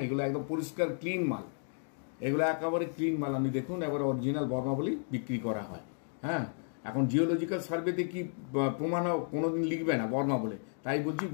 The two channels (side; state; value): right; silent; 56 dB below the other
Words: এগুলো একদম পরিষ্কার ক্লিন মাল, এগুলো একেবারে ক্লিন মাল। আমি দেখুন, এবার অরিজিনাল বর্মা বলেই বিক্রি করা হয়। হ্যাঁ, এখন জিওলজিক্যাল সার্ভেতে কি প্রমাণ কোনোদিন লিখবে না বর্মা বলে, তাই বলছি